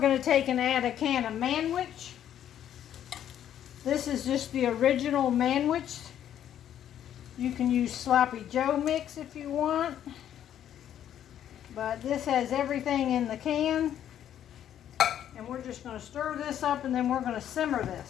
to take and add a can of Manwich. This is just the original Manwich. You can use Sloppy Joe mix if you want. But this has everything in the can. And we're just going to stir this up and then we're going to simmer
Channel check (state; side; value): quieter; right; 10.5 dB